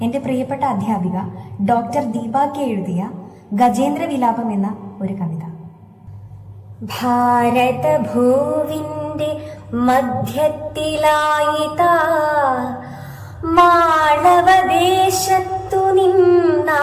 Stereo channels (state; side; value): identical; both; correlation 1.00